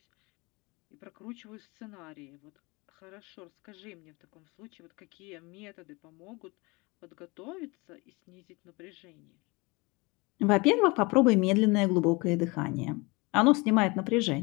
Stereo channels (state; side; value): quieter; right; 25.8 dB